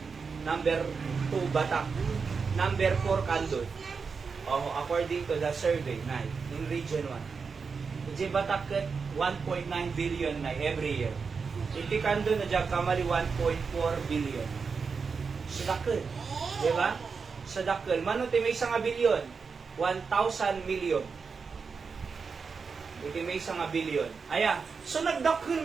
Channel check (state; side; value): quieter; left; 5.3 dB